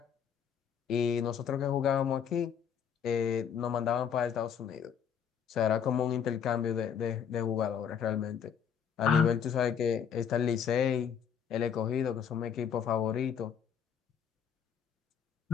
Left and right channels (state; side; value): quieter; right; 7.9 dB